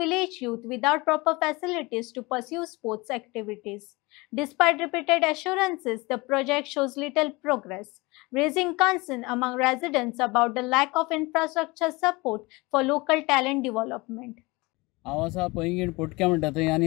youth without proper facilities to pursue sports activities. Despite repeated assurances, the project shows little progress, raising concern among residents about the lack of infrastructure support for local talent development. हांव आसा पैंगीण पोटक्या म्हणटा थंय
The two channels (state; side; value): quieter; right; 24.1 dB